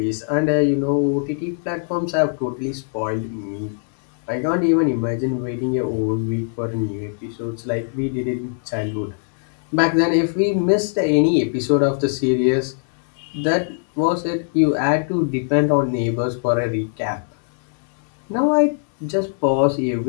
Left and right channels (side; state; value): right; silent; digital silence